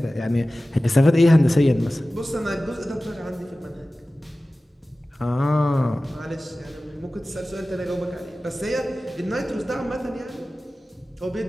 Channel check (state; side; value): normal; both; correlation 0.96